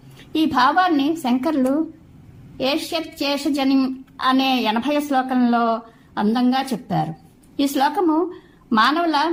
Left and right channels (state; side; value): identical; both; correlation 1.00